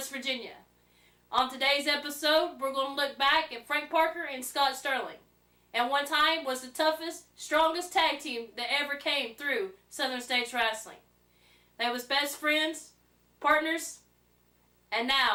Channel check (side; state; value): both; identical; correlation 1.00